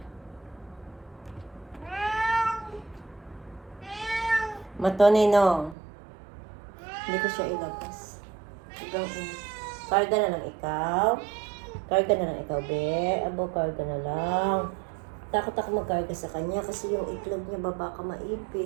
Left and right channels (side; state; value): left; drops out; at 5.8 s